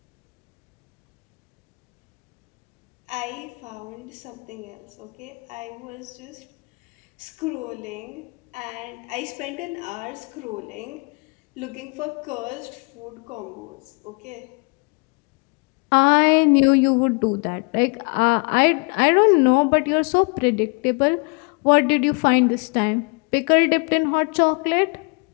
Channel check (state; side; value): quieter; right; 33.5 dB